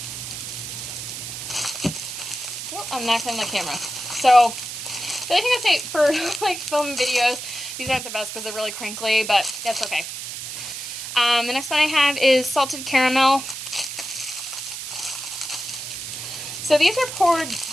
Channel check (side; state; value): right; noise; hiss, 7 dB below the sound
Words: Oh, I'm knocking the camera. So the only thing I'd say for like film videos, these aren't the best because they're really crinkly, but that's okay. The next one I have is salted caramel. So these are poured,